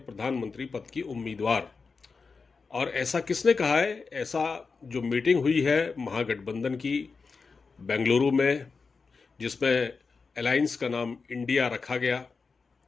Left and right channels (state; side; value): quieter; right; 4.7 dB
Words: प्रधानमंत्री पद की उम्मीदवार। और ऐसा किसने कहा है? ऐसा जो मीटिंग हुई है महागठबंधन की बेंगलुरु में, जिसमें अलायंस का नाम इंडिया रखा गया,